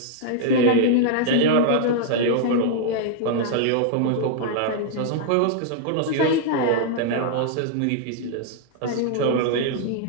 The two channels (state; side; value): different; both; correlation -0.01